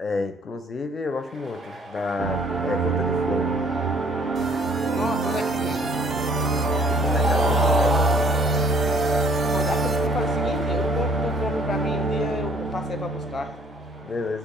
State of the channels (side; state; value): both; normal; correlation 0.58